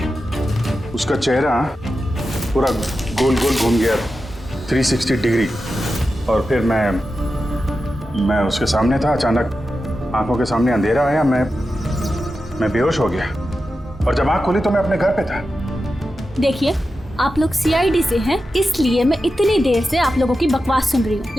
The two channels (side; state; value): both; normal; correlation 0.91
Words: उसका चेहरा पूरा गोल घूम गया 360 डिग्री और फिर मैं उसके सामने था, अचानक आंखों के सामने अंधेरा आया, मैं बेहोश हो गया और जब आंख खोली तो मैं अपने घर पे था। देखिए आप लोग सीआईडी से हैं, इसलिए मैं इतनी देर से आप लोगों की बकवास सुन रही हूँ,